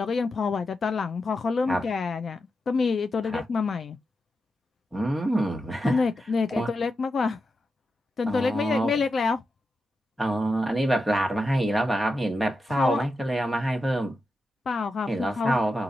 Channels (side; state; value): both; normal; correlation 0.89